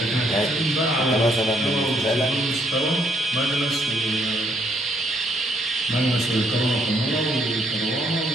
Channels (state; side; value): normal; both; correlation 0.71